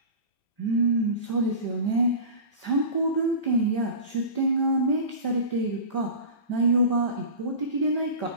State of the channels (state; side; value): late; right; 5.1 ms